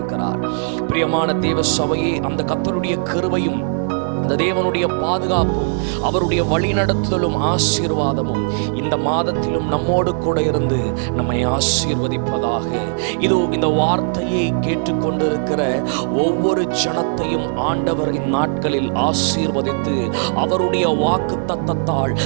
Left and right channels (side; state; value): left; silent; digital silence